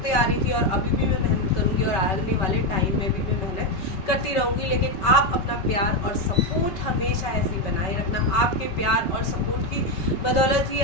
आ रही थी और अभी भी मैं मेहनत करूँगी और आने वाले टाइम में भी मैं मेहनत करती रहूँगी। लेकिन आप अपना प्यार और सपोर्ट हमेशा ऐसे ही बनाए रखना। आपके प्यार और सपोर्ट की बदौलत ही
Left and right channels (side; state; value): right; late; 5.3 ms